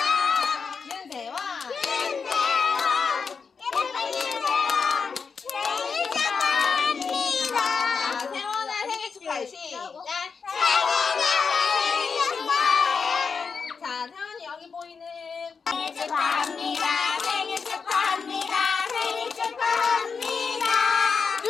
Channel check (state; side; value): quieter; right; 5.5 dB